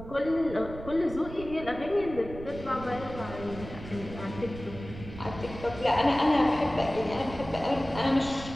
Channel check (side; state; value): right; noise; rumble, 12 dB below the sound